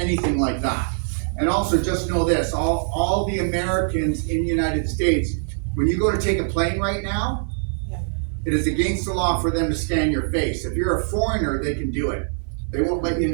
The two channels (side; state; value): left; silent; digital silence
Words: like that. And also, just know this, all the Americans in the United States, when you go to take a plane right now, it is against the law for them to scan your face. If you're a foreigner, they can do it. They won't let you